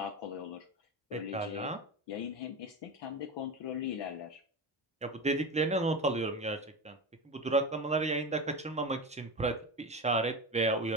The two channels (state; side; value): normal; both; correlation 0.23